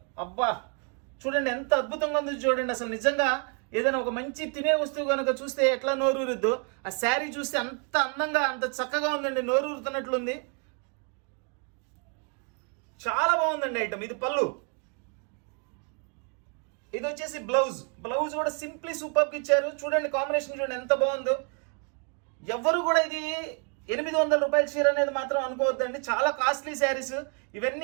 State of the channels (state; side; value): quieter; left; 39.0 dB